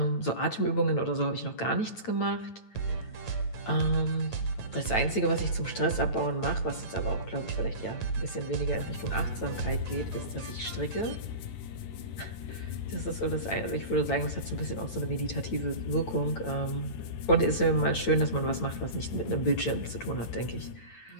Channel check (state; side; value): late; right; 9.0 ms